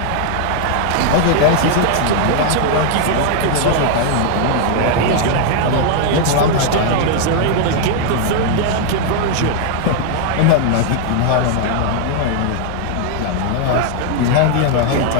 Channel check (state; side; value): different; both; correlation 0.00